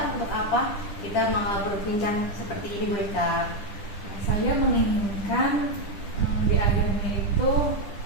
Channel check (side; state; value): right; late; 10 ms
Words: untuk apa? Kita mau berbincang seperti ini Bu Eka. Nah, saya menginginkan di akhirnya itu